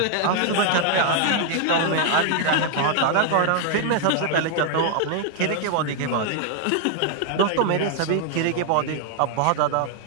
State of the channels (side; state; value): both; different; correlation 0.00